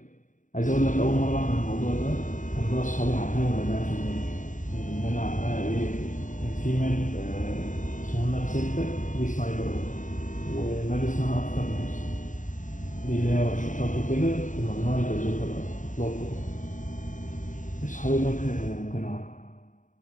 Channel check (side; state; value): right; late; 0.37 ms